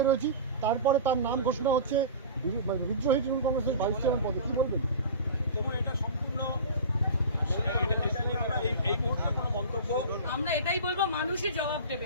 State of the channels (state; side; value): inverted; both; correlation -0.34